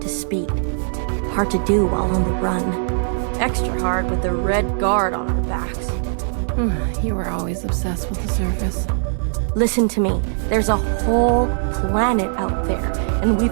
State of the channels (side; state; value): left; silent; digital silence